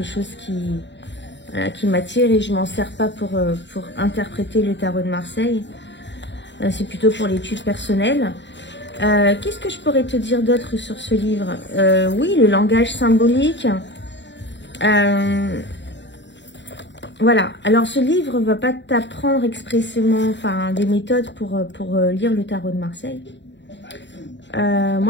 chose qui m'attire et je m'en sers pas pour interpréter le tarot de Marseille. C'est plutôt pour l'étude personnelle. Qu'est-ce que je pourrais te dire d'autre sur ce livre? Oui, le langage symbolique. Voilà. Alors, ce livre ne va pas t'apprendre expressément des méthodes pour lire le tarot de Marseille.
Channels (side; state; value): right; late; 0.52 ms